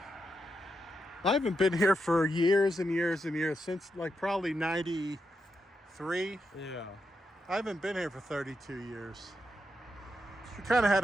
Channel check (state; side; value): normal; both; correlation 0.84